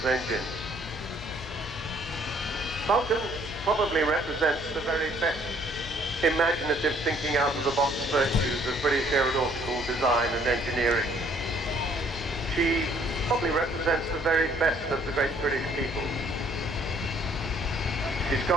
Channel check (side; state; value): left; noise; hum, 14 dB below the sound